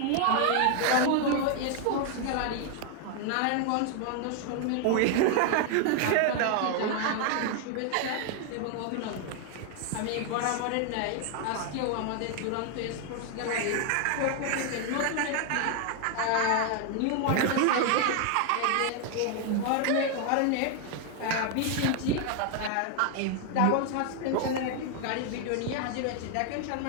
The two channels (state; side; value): different; both; correlation 0.00